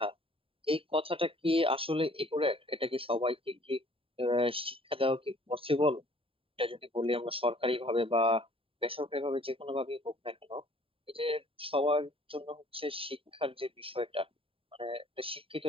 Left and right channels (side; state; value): left; late; 0.27 ms